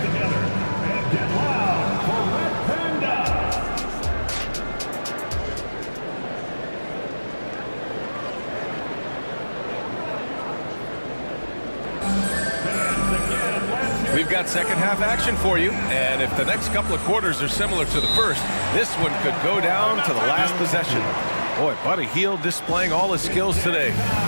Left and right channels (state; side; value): inverted; both; correlation -1.00